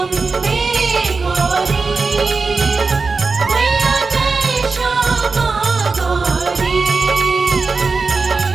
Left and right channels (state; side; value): quieter; left; 4.3 dB